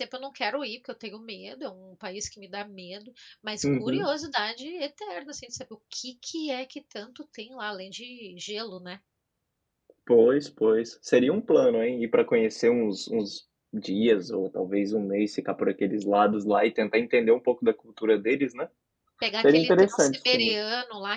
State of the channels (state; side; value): identical; both; correlation 1.00